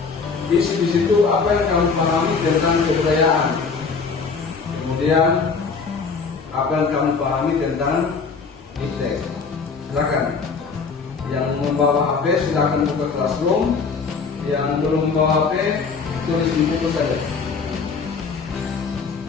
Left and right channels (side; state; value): right; quieter; 5.0 dB